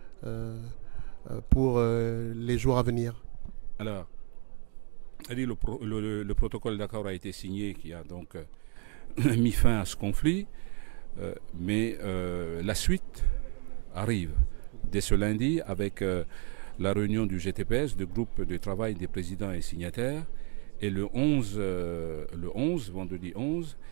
pour les jours à venir? Alors, le protocole d'accord a été signé, qui a donc mis fin à ce conflit, mais la suite arrive dès ce lundi avec la réunion du GTPS, du groupe de travail des présidents et signataires, et le 11, vendredi 11,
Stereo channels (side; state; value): left; quieter; 34.7 dB